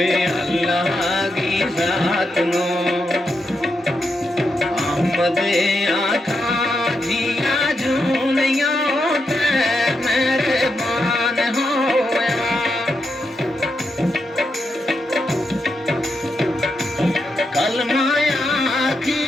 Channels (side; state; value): both; normal; correlation 0.84